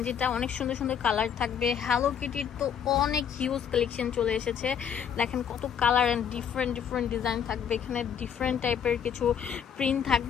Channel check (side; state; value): right; quieter; 8.1 dB